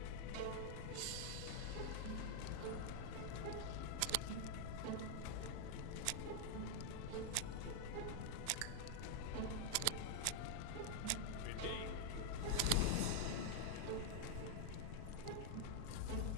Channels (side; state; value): both; different; correlation -0.01